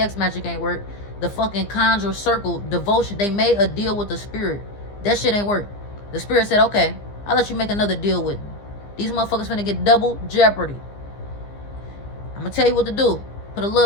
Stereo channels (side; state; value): right; late; 15 ms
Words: magic ain't work. The fucking conjure circle devotion, they made a deal with the spirit. That shit ain't work. The spirit said, okay, I'll let you make another deal with me. These motherfuckers finna get double jeopardy. I'm gonna tell you what to do. Put a